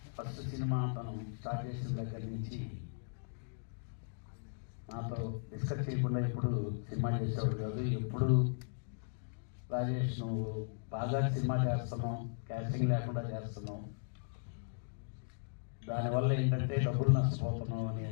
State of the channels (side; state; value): right; silent; digital silence